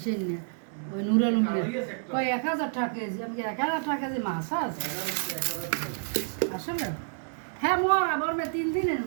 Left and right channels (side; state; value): left; silent; digital silence